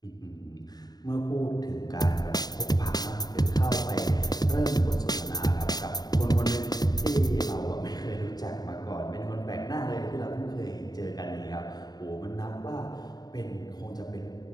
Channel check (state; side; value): late; right; 0.19 ms